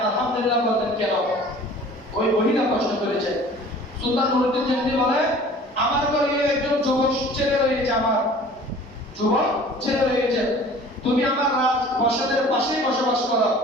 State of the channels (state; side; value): normal; both; correlation 0.47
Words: আলহামদুলিল্লাহ বললেন কেন? ওই মহিলা প্রশ্ন করেছে। সুলতান নুরুদ্দিন জাহাঙ্গীর বলে, আমার ঘরে একজন যুবক ছেলে রয়েছে, আমার যুবক ছেলে রয়েছে, তুমি আমার রাজপ্রাসাদের পাশেই বসবাস করো।